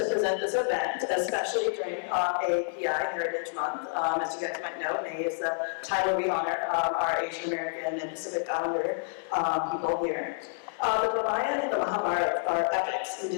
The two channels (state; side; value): silent; right; 59 dB below the other